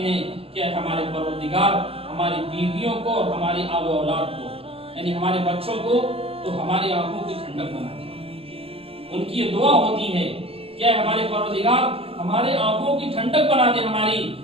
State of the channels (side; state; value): left; late; 0.28 ms